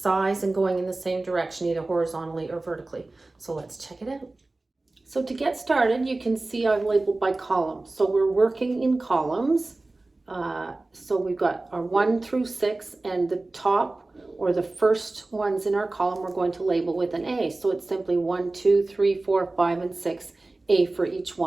and going in the same direction, either horizontally or vertically. So let's check it out. So to get started, you can see I've labeled by column. So we're working in columns. So we've got our 1 through 6, and the top or the first ones in our column we're going to label with an A. So it's simply 1, 2, 3, 4, 5, and 6. A for each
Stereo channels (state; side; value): quieter; left; 3.1 dB